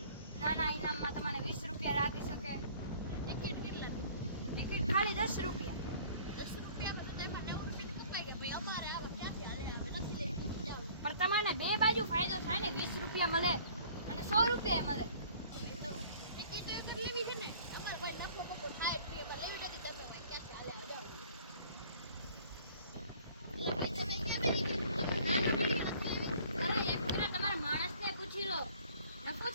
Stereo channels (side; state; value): both; inverted; correlation -0.52